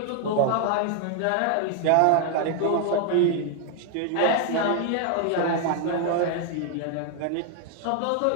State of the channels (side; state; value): both; different; correlation 0.00